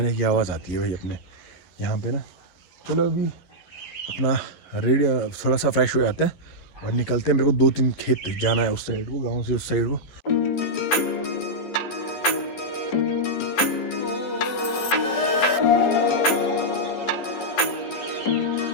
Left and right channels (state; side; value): late; right; 11 ms